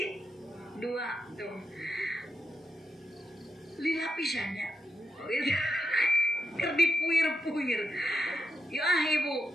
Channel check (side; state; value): both; normal; correlation 0.83